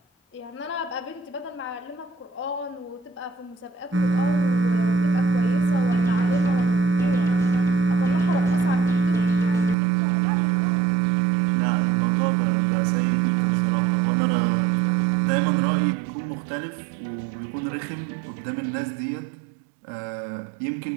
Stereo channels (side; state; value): left; drops out; at 9.8 s